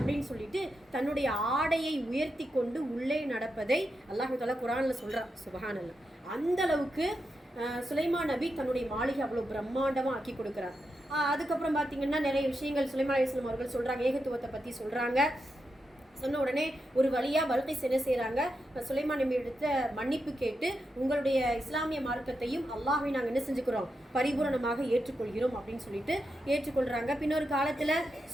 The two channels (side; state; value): both; normal; correlation 0.86